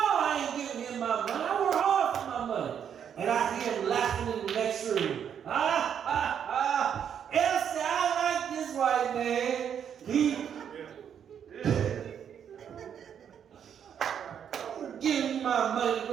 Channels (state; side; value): quieter; left; 8.4 dB